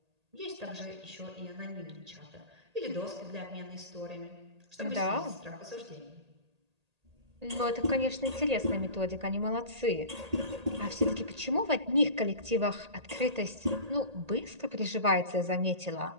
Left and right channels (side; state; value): left; late; 1.8 ms